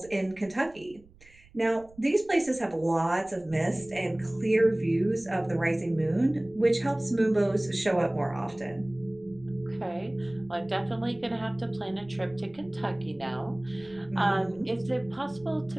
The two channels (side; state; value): right; noise; rumble, 26 dB below the sound